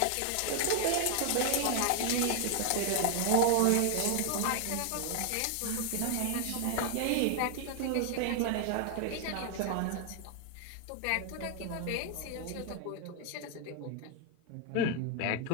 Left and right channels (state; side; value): different; both; correlation 0.00